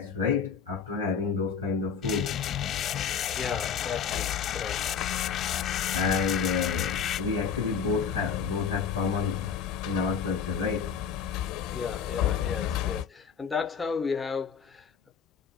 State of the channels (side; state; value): right; quieter; 6.8 dB